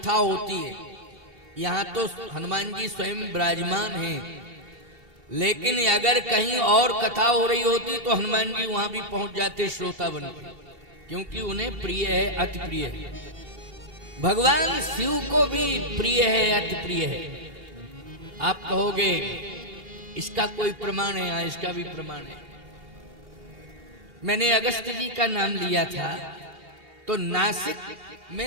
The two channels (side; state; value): left; late; 2.7 ms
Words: होती है, यहाँ तो हनुमान जी स्वयं विराजमान हैं, लेकिन अगर कहीं और कथा हो रही होती तो हनुमान जी वहां भी पहुंच जाते श्रोता बनकर, क्योंकि उन्हें प्रिय है, अति प्रिय है। भगवान शिव को भी प्रिय है, अति प्रिय है। आप कहोगे इसका कोई प्रमाण है? हाँ, इसका भी प्रमाण है। मैंने अगस्त जी का नाम लिया था तो नासिक